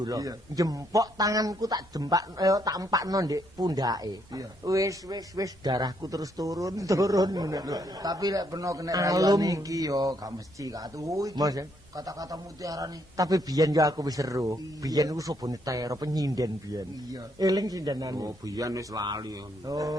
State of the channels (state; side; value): normal; both; correlation 0.73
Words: lho. Iya. Jempok tanganku tak tak empakno ndek pundake. Iya. Wis darahku terus turun ngono. Tapi lek peno kena Alum. rayuan iki yo gak mesti gak tuh iki. Mas, ya? Kata-kata mutiara nih. Tapi biyen ya aku wis seru. Biyen aku sobone tero penyinden biyen. Iya. Eling sindenane. Oh, biyen wis lali.